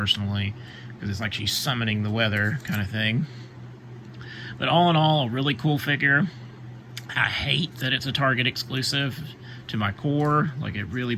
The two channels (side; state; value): both; identical; correlation 1.00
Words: because it's like she's summoning the weather kind of thing. But all in all, a really cool figure. I hate that it's a Target exclusive to my core. Like, it really